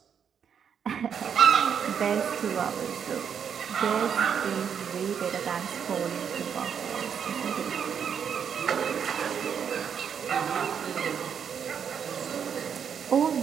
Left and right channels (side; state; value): left; quieter; 7.6 dB